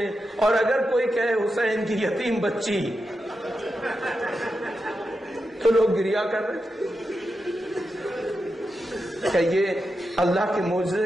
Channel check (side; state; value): both; normal; correlation 0.88